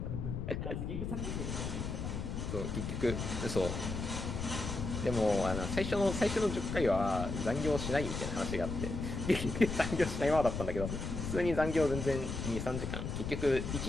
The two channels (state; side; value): noise; left; rumble, 4 dB below the sound